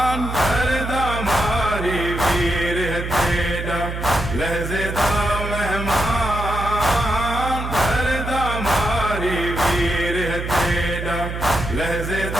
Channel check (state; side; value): noise; right; hum, 6 dB below the sound